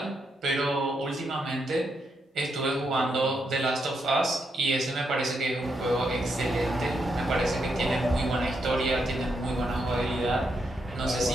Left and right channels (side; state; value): both; normal; correlation 0.80